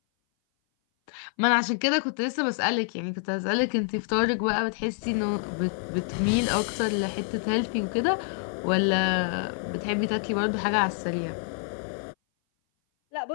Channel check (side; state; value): right; silent; 58 dB below the other